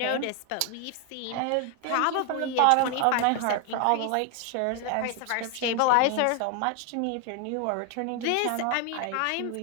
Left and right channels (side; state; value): both; different; correlation 0.01